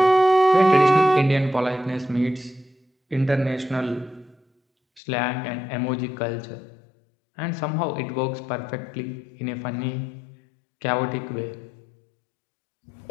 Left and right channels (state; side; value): drops out; right; at 5.0 s